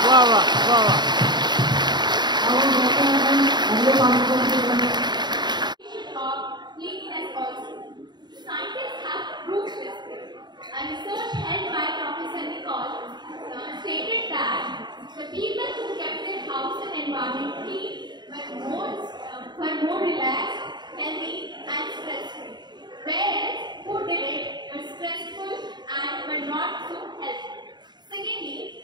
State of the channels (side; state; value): left; late; 0.21 ms